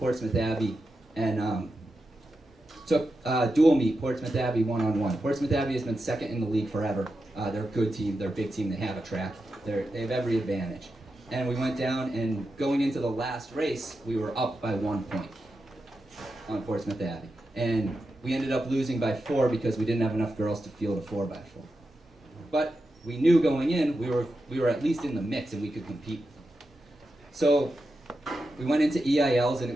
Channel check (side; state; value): both; normal; correlation 0.89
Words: Abbey and took dual meet, Portsmouth Abbey one-on-one. Portsmouth Abbey has been second in the league forever. They're a good team. They're a big team. They have a track. They have every advantage. And we went down, and going into the last race, we were up by 1 point on Portsmouth Abbey. And we ended up losing by 4 because we didn't have enough girls to field a 4x4. But we knew going in, we were at least in the mix and we could compete. So we went into EILs, and it